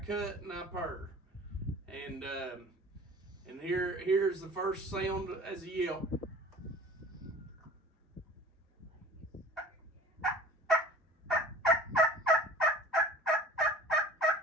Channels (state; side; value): normal; both; correlation 0.44